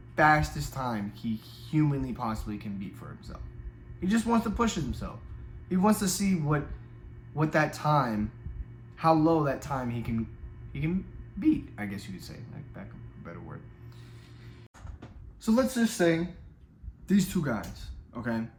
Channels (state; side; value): identical; both; correlation 1.00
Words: fastest time he humanly possibly can beat for himself. He just wants to push himself. He wants to see what that time, how low that time he can beat, I guess you could say, like back a better word. So let's just say these 2 guys, okay?